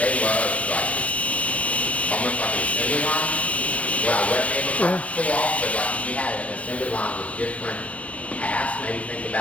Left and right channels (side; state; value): right; late; 0.065 ms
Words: loved, like, almost like an assembly line. What I wasn't able to pull off, but like, if you had an assembly line with different tasks, maybe think